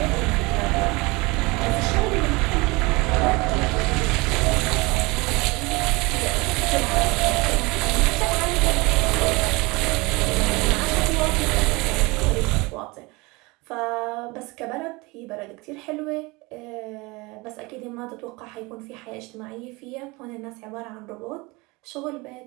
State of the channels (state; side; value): quieter; left; 24.7 dB